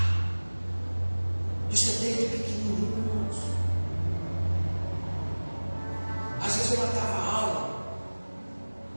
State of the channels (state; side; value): inverted; both; correlation -1.00